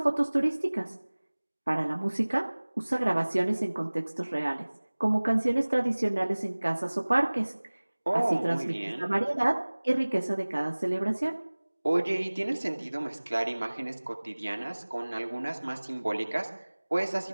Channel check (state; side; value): inverted; both; correlation -1.00